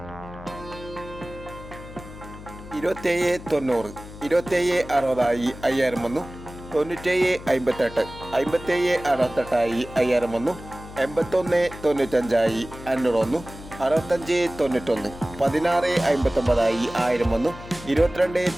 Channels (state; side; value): noise; left; hum, 15 dB below the sound